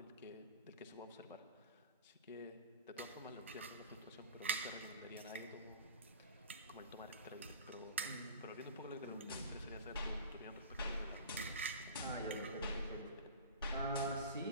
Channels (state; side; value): inverted; both; correlation -0.37